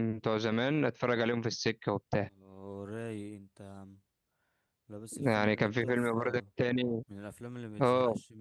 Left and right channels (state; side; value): identical; both; correlation 1.00